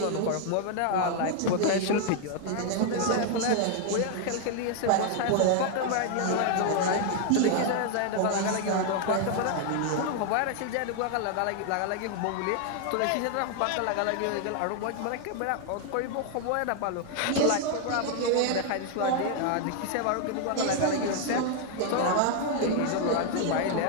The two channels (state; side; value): different; both; correlation 0.00